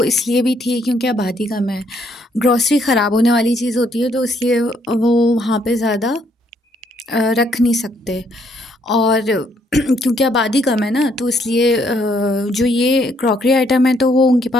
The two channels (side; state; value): both; normal; correlation 0.70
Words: इसलिए भी थी क्योंकि आबादी कम है। ग्रॉसरी ख़राब होने वाली चीज़ होती है तो इसलिए वो वहाँ पे ज़्यादा रख नहीं सकते, और क्योंकि आबादी कम है ना, तो इसलिए जो ये क्रॉकरी आइटम है तो वो उनके